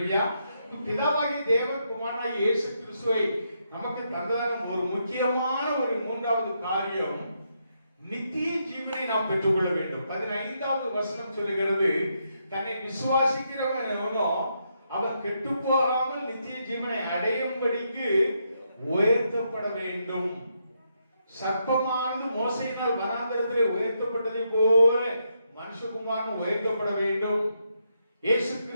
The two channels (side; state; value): both; inverted; correlation -0.79